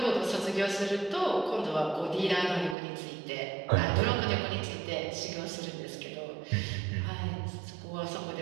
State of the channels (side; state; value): left; drops out; at 2.8 s